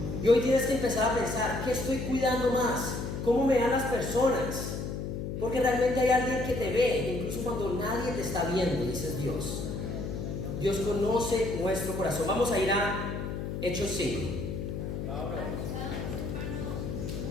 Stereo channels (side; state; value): left; noise; hum, 4 dB below the sound